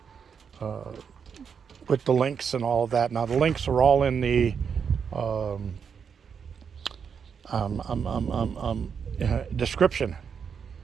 with the links and all of that. Now the links are all in the description.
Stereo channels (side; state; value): left; quieter; 6.7 dB